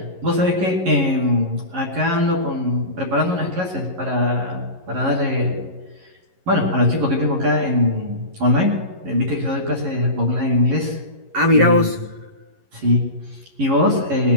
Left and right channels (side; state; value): left; late; 11 ms